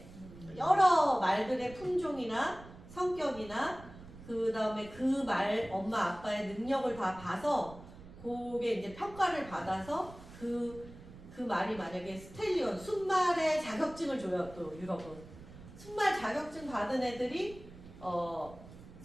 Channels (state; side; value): noise; right; rumble, 17 dB below the sound